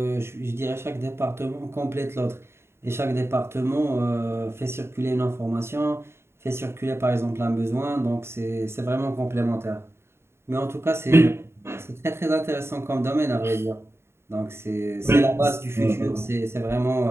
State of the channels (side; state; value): left; late; 0.12 ms